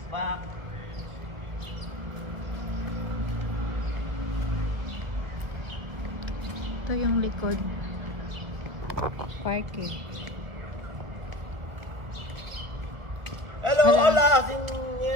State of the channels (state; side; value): late; left; 1.2 ms